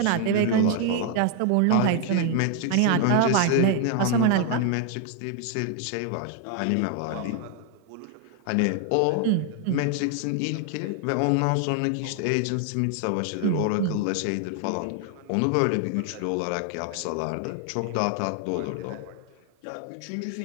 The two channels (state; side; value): different; both; correlation 0.00